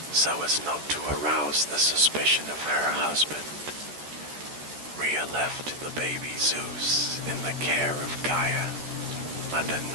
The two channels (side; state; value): left; late; 13 ms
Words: so as not to arouse the suspicion of her husband. Rhea left the baby Zeus in the care of Gaia and a